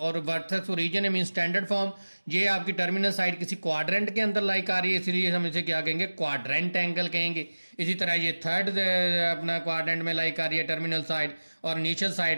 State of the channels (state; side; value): inverted; both; correlation -1.00